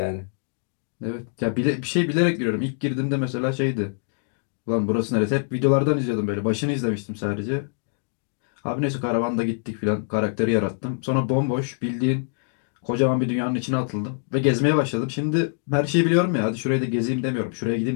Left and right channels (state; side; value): silent; right; digital silence